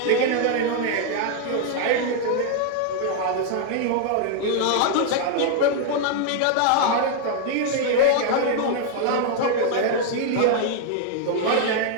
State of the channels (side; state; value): both; different; correlation 0.00